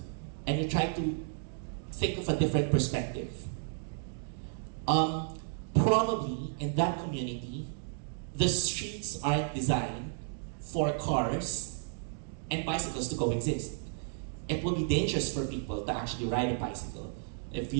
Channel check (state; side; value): silent; left; digital silence